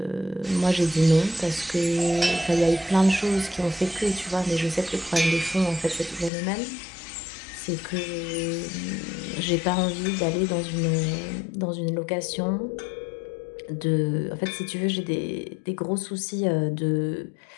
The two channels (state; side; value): drops out; right; at 6.3 s